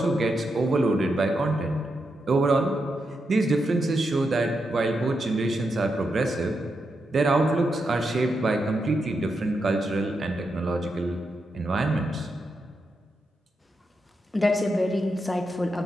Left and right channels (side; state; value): both; normal; correlation 0.85